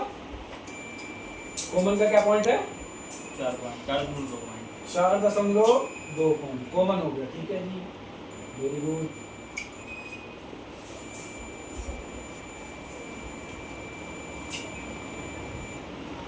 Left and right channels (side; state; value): both; identical; correlation 1.00